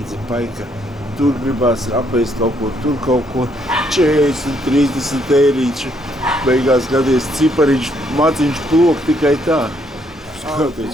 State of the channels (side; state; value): both; normal; correlation 0.71